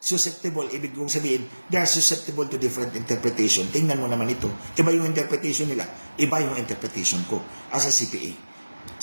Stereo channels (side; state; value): both; inverted; correlation -1.00